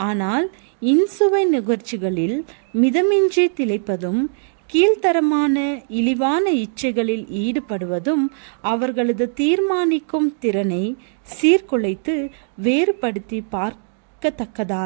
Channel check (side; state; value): left; silent; digital silence